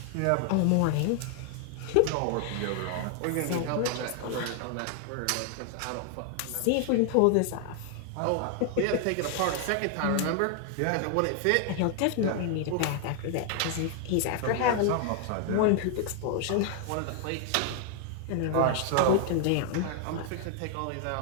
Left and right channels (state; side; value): different; both; correlation 0.00